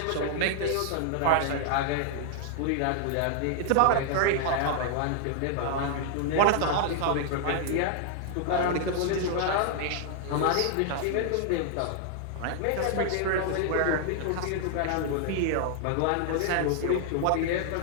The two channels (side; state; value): both; different; correlation 0.00